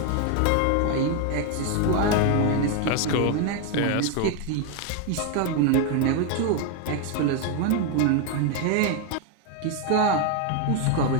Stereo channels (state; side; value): different; both; correlation 0.01